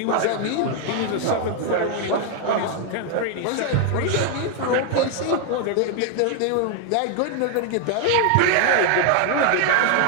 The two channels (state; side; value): different; both; correlation 0.00